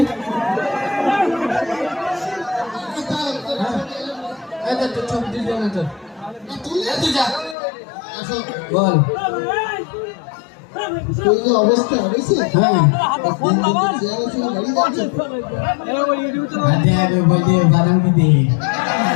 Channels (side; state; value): right; drops out; at 7.6 s